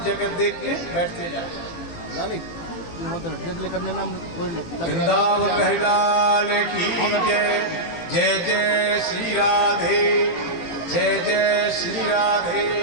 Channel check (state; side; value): late; right; 18 ms